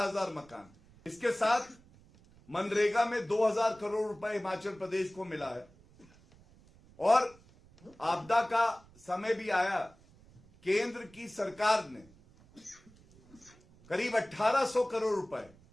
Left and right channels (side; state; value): right; noise; rumble, 26 dB below the sound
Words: मकान, इसके साथ मनरेगा में 2000 करोड़ रुपए हिमाचल प्रदेश को मिला है। और आपदा का समय भी आया, केंद्र की सरकार ने करीब 1800 करोड़ रुपए